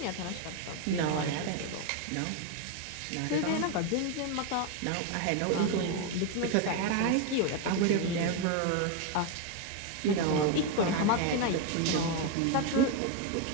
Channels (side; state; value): both; different; correlation 0.01